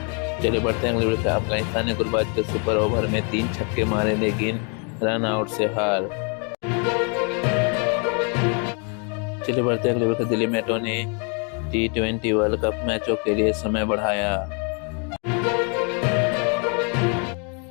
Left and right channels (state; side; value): quieter; right; 37.7 dB